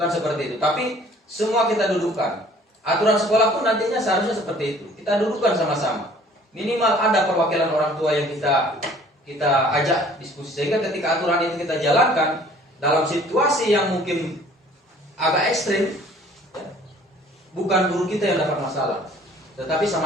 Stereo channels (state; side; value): normal; both; correlation 0.54